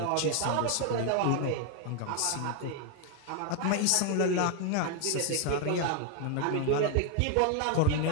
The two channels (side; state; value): both; different; correlation 0.00